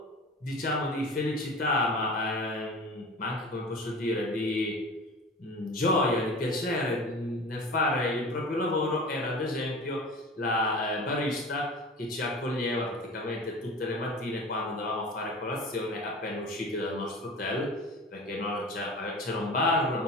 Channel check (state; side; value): normal; both; correlation 0.36